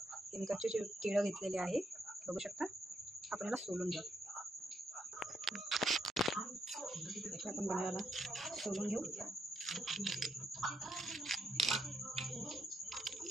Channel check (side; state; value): both; normal; correlation 0.77